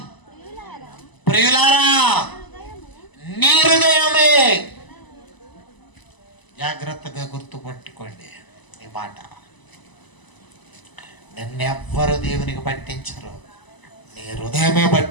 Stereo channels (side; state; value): right; late; 1.0 ms